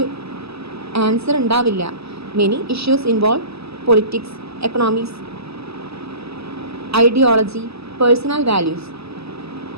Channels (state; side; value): late; left; 0.78 ms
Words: ആൻസർ ഉണ്ടാവില്ല. Many issues involve politics, economics, ideology, personal values.